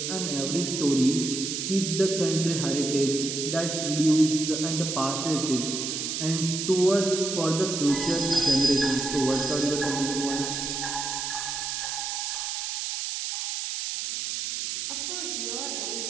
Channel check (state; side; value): noise; right; hiss, 3 dB below the sound